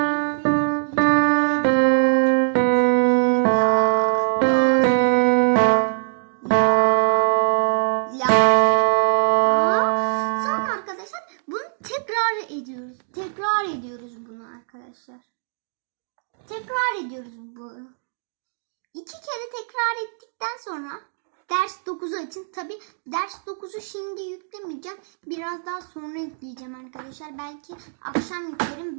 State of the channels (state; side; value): silent; left; digital silence